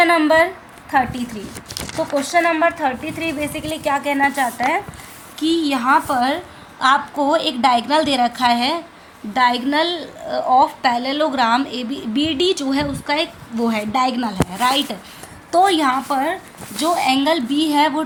नंबर 33। तो क्वेश्चन नंबर 33 बेसिकली क्या कहना चाहता है कि यहाँ पर आपको एक डायगनल दे रखा है, diagonal of parallelogram A B D जो है उसका एक वो है डायगनल है, राइट। तो यहाँ पर जो एंगल बी है वो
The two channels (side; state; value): both; identical; correlation 1.00